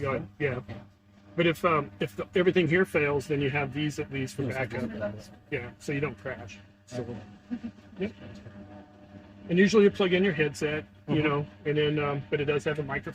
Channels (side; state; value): both; identical; correlation 1.00